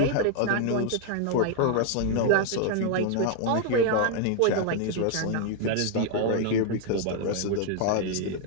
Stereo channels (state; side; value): different; both; correlation 0.00